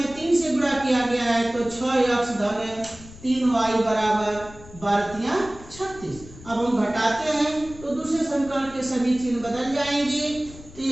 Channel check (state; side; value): noise; left; rumble, 18 dB below the sound